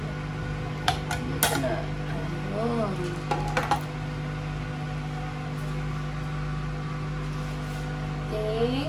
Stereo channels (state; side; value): identical; both; correlation 1.00